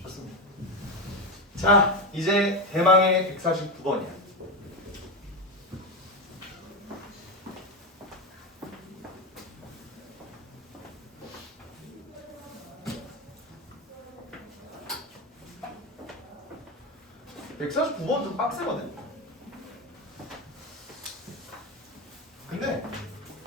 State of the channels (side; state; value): both; normal; correlation 0.13